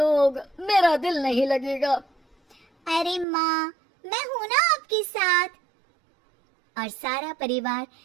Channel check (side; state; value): left; drops out; at 3.2 s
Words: मेरा दिल नहीं लगेगा। अरे माँ, मैं हूं ना आपके साथ। और सारा परिवार